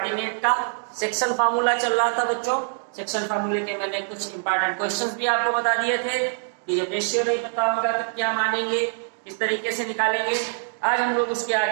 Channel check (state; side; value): silent; left; digital silence